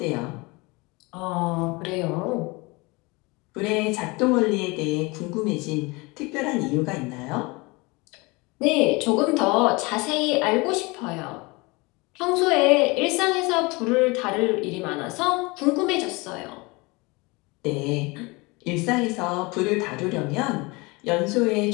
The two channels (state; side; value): quieter; right; 25.4 dB